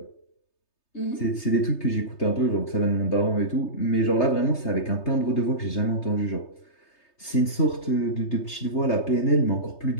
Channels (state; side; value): late; right; 3.3 ms